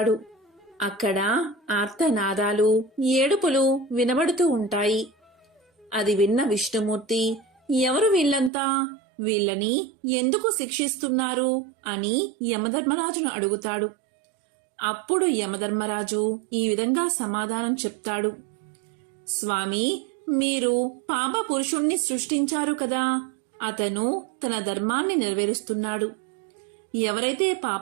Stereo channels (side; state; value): left; drops out; at 8.5 s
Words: అక్కడ ఆర్తనాదాలు, ఏడుపులు వినబడుతూ ఉంటాయి. అది విన్న విష్ణుమూర్తి, ఎవరు వీళ్ళంతా, వీళ్ళని ఎందుకు శిక్షిస్తున్నారు అని యమధర్మరాజును అడుగుతాడు. అప్పుడు యమధర్మరాజు ఈ విధంగా సమాధానం చెప్తాడు. స్వామి, మీరు పాప పురుషుణ్ణి సృష్టించారు కదా, అతను తన ధర్మాన్ని నెరవేరుస్తున్నాడు. ఎవరైతే